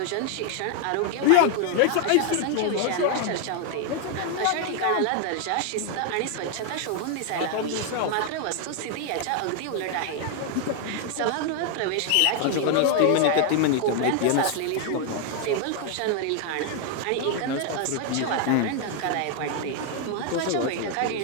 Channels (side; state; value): both; different; correlation 0.00